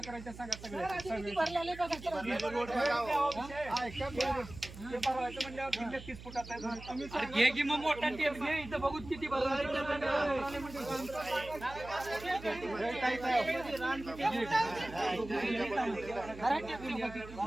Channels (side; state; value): right; noise; hum, 15 dB below the sound